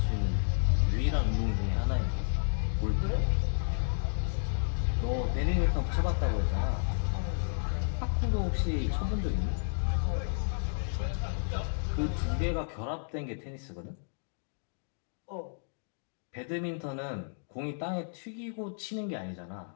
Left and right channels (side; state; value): right; silent; digital silence